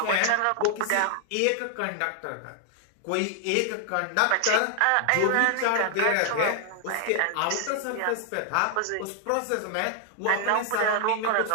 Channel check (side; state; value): both; different; correlation 0.00